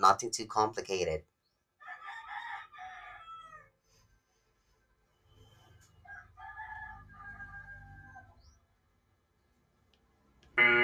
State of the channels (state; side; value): identical; both; correlation 1.00